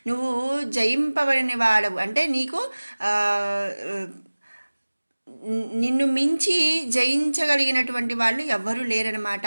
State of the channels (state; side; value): inverted; both; correlation -1.00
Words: నువ్వు జయింపబడిన వాడవు అంటే నీకు నిన్ను మించి జయించగలిగినటువంటి వాళ్ళు ఎవ్వరూ లేరనమాట.